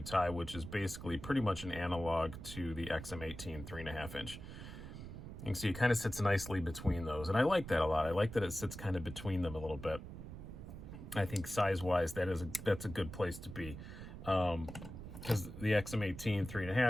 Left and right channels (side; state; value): right; noise; rumble, 11 dB below the sound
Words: tie, which is basically pretty much an analog to the XM18 3.5 inch. You can see it kind of sits nicely between those, and I like that a lot. I like that it sits kind of between them a little bit. I think size-wise, that's a good place to be, because the XM18